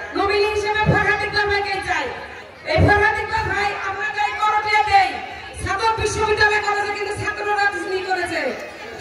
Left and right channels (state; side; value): identical; both; correlation 1.00